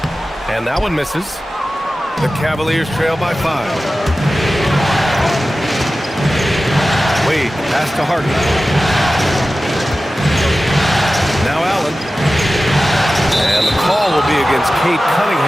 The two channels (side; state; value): both; normal; correlation 0.95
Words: And that one misses. The Cavaliers trail by 5. Wade, pass to Harden. Now Allen. And the call will be against Cade